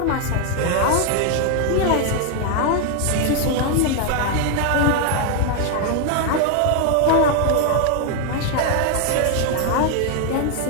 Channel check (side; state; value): both; different; correlation 0.00